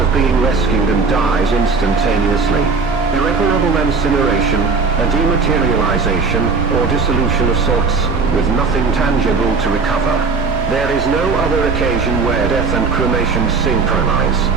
being rescued and dies instantaneously. Irreparable incineration, a dematerialization, or dissolution of sorts, with nothing tangible to recover. There is no other occasion where death and cremation synchronize.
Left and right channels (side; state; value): left; quieter; 4.6 dB